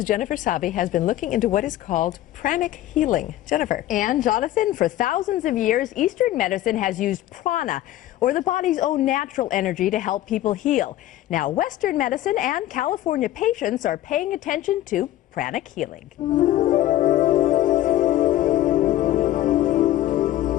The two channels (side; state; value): right; quieter; 14.1 dB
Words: Jennifer Sabi has been looking into what is called pranic healing. Jennifer. And Jonathan, for thousands of years, Eastern medicine has used prana, or the body's own natural energy, to help people heal. Now, Western medicine and California patients are paying attention to pranic healing.